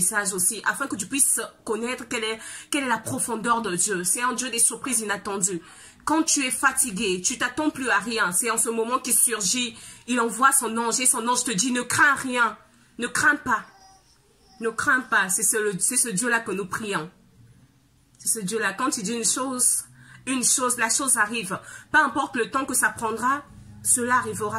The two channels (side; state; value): both; identical; correlation 1.00